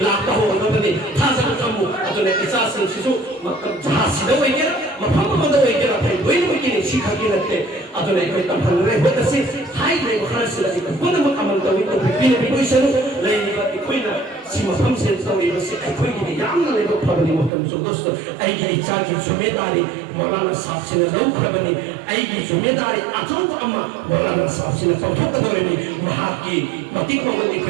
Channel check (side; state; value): left; drops out; at 17.5 s